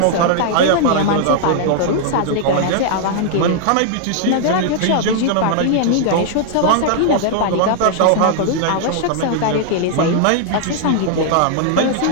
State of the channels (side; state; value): both; different; correlation 0.00